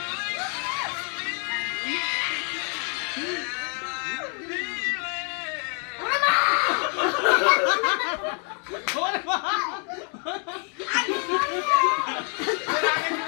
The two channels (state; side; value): quieter; right; 39.9 dB